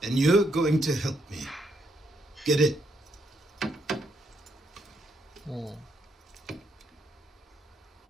and you're going to help me. Get it?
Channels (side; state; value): both; normal; correlation 0.76